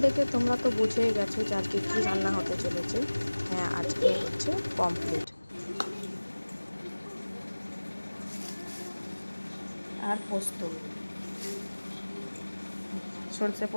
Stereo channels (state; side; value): inverted; both; correlation -1.00